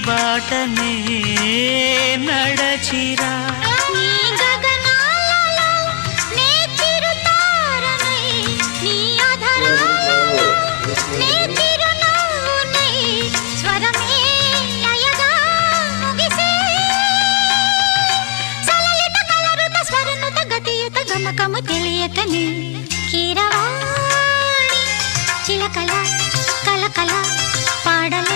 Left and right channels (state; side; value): quieter; right; 35.4 dB